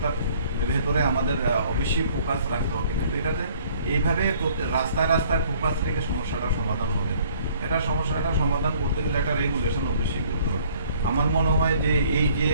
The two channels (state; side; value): inverted; both; correlation -0.58